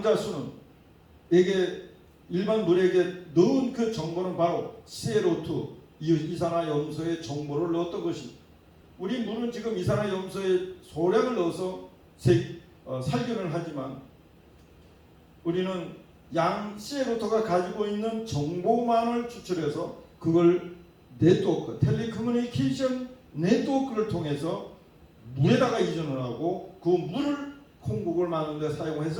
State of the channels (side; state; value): both; identical; correlation 1.00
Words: 일반 물에게 넣은 그 정보는 바로 CO2, 이산화염소의 정보를 넣었던 것입니다. 우리 물은 지금 이산화염소의 소량을 넣어서 살균을 하지만 우리는 CO2가 가지고 있는 정보만을 추출해서 그걸 네트워크, 텔레커뮤니케이션 네트워크를 통해서 물에다가 이전을 하고 그 물을 콩국을 만드는 데